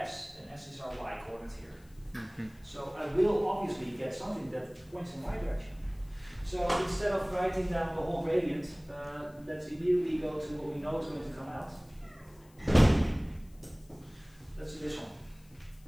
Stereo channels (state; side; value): noise; left; hiss, 29 dB below the sound